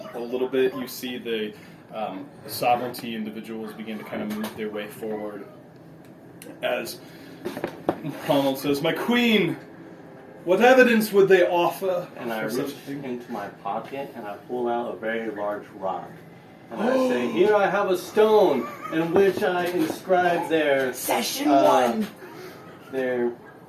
A little bit, you see the sovereignty individuals begin to kind of move their way forward. As Ronald says, "My queen, what evidence would they offer?" And I for such reach a thing?" into my pocket and I pull out a very large rock. And I say, here I have a stone in which I inscribe their Session their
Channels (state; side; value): identical; both; correlation 1.00